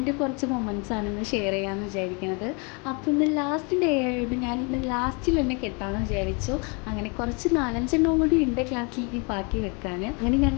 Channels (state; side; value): quieter; right; 32.8 dB